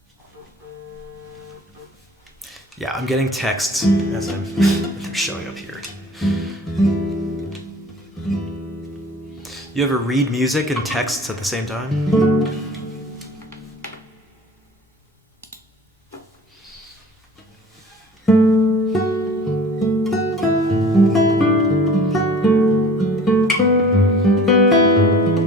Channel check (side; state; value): both; normal; correlation 0.46